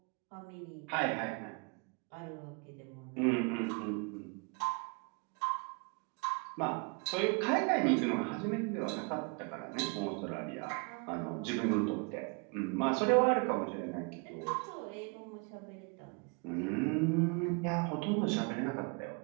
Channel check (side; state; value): left; quieter; 33.5 dB